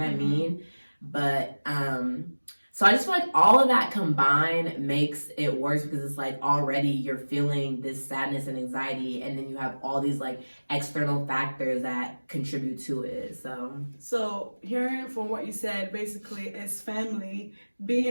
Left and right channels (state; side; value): inverted; both; correlation -1.00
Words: what I mean? But so I just feel like all of that combined makes it worse because it's like already you're feeling this sadness and anxiety, and then you have all these like external factors that contribute to it. So hearing from what you said, basically, it's family,